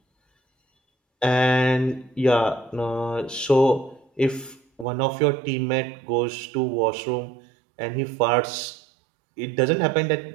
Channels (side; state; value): left; drops out; at 4.9 s